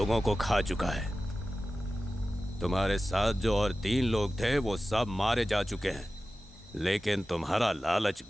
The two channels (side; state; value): both; normal; correlation 0.95